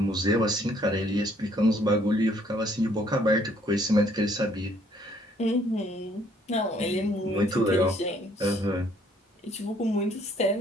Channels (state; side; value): normal; both; correlation 0.64